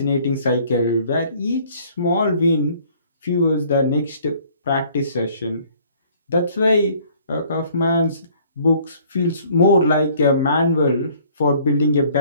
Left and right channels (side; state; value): both; inverted; correlation -0.57